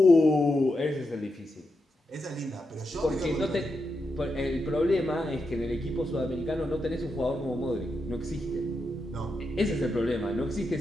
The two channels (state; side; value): normal; both; correlation 0.86